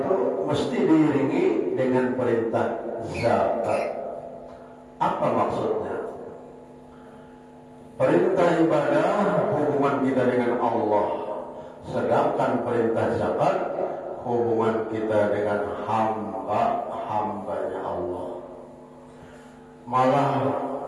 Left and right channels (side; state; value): both; identical; correlation 1.00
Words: mesti diiringi dengan perintah zakat. Apa maksudnya? Perintah ibadah hubungan kita dengan Allah, sedangkan perintah zakat hubungan kita dengan hambanya Allah. Malah